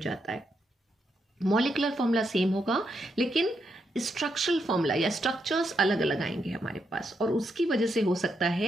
है. मॉलिक्यूलर फॉर्मूला सेम होगा लेकिन स्ट्रक्चरल फॉर्मूला या स्ट्रक्चर्स अलग अलग आएंगे हमारे पास, और उसकी वजह से हो सकता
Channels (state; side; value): normal; both; correlation 0.81